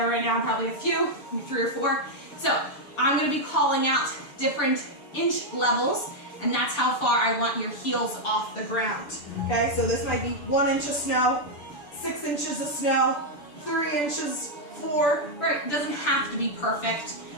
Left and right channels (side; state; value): right; late; 6.8 ms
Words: right now, probably a few, maybe 3 or 4. So I'm gonna be calling out different inch levels, and that's how far I want your heels off the ground. Okay, so this might be 1 inch of snow, 6 inches of snow, 3 inches, 4, right? It doesn't have to be perfect.